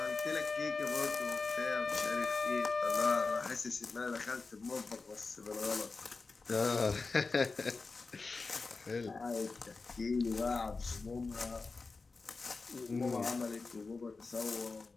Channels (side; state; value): right; quieter; 4.1 dB